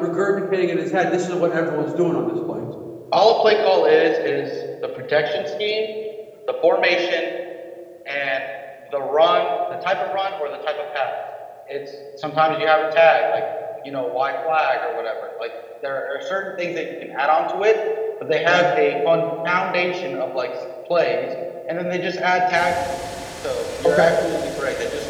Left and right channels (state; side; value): identical; both; correlation 1.00